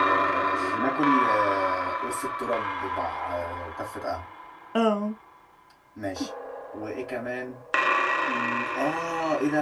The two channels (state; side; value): identical; both; correlation 1.00